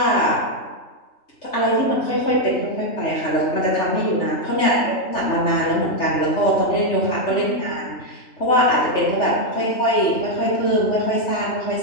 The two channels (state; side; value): late; right; 3.2 ms